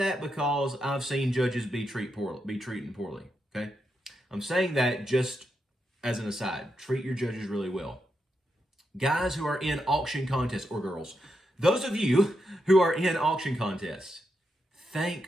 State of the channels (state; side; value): normal; both; correlation 0.84